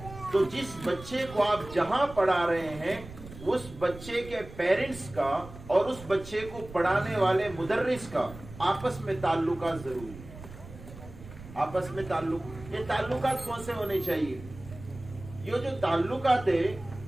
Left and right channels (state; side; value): noise; right; rumble, 15 dB below the sound